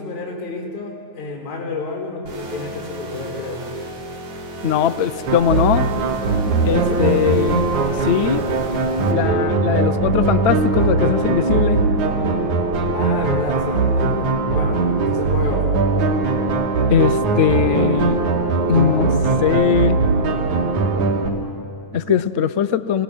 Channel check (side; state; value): left; late; 9.3 ms